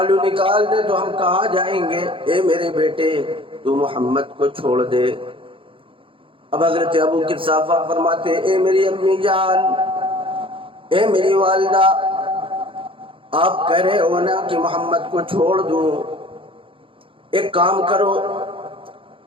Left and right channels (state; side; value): late; left; 0.25 ms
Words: نکال دے تو ہم کہاں جائیں گے؟ اے میرے بیٹے تو محمد کو چھوڑ دے۔ اب حضرت ابو قحافہ فرماتے اے میری امی جان، اے میری والدہ، آپ کہہ رہے ہو نا کہ محمد کو چھوڑ دوں، ایک کام کرو،